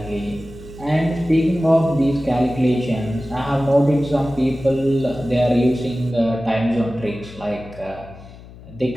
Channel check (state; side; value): noise; left; hum, 18 dB below the sound